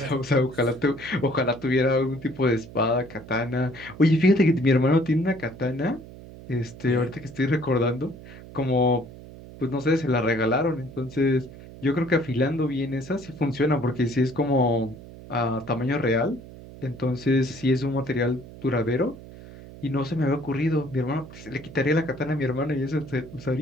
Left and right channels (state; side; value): noise; right; hum, 16 dB below the sound